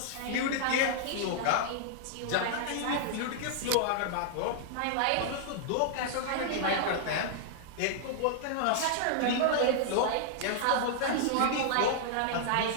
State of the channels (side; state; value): both; different; correlation -0.01